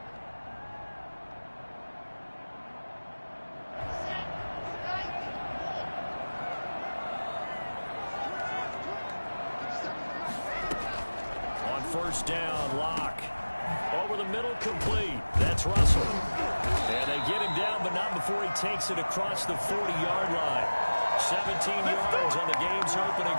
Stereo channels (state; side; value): inverted; both; correlation -1.00